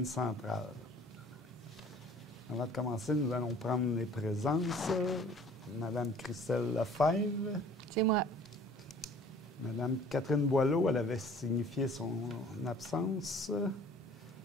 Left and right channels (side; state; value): both; normal; correlation 0.51